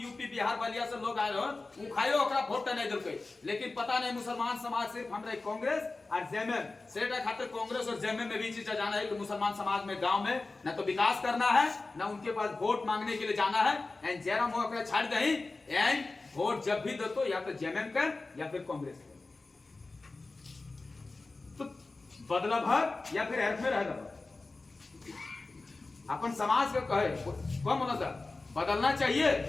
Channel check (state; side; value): quieter; right; 3.5 dB